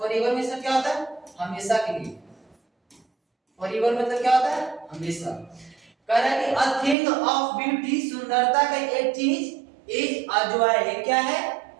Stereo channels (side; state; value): left; drops out; at 7.0 s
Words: मींस क्या होता है? हमेशा के लिए। फॉरएवर मतलब क्या होता है? हमेशा। कह रहा है कि अ थिंग ऑफ ब्यूटी, सुंदरता का एक चीज, इज अ जॉय, क्या है?